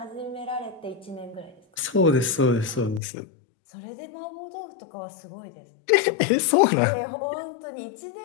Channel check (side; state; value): right; drops out; at 3.0 s